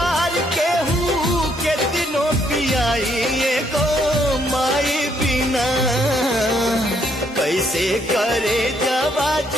के हूँ के दिनों पियाई को माई बिना कैसे करे जवा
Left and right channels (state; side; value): normal; both; correlation 0.71